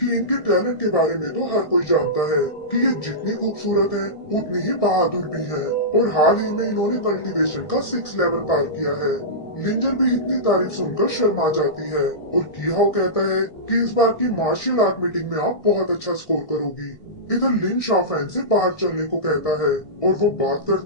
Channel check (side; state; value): right; late; 1.6 ms